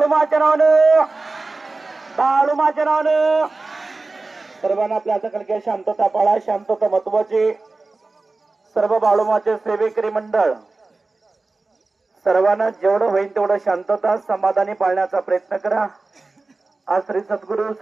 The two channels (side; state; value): left; quieter; 3.5 dB